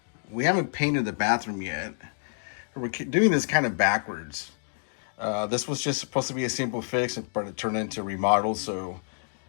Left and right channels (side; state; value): right; silent; digital silence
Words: we haven't painted the bathroom yet. We're doing this kind of backwards. This was just supposed to be a simple fix, but it turned into a remodel, so